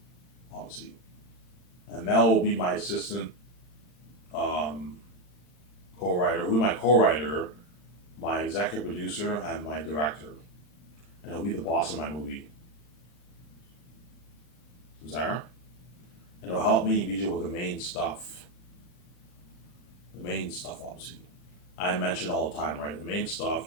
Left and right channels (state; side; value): late; right; 40 ms